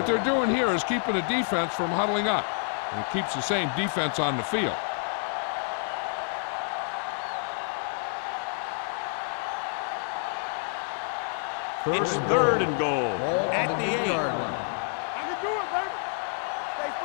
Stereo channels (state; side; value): silent; right; 59 dB below the other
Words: they're doing here is keeping the defense from huddling up, and it keeps the same defense on the field. It's 3rd and goal at the 8. I can do it, baby. Stay